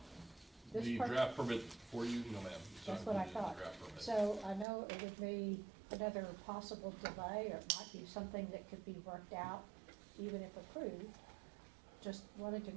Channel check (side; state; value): left; drops out; at 4.7 s